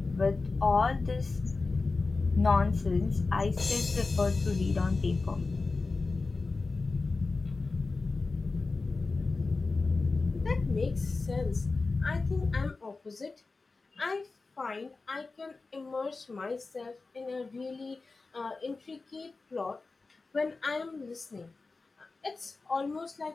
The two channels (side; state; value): right; quieter; 3.8 dB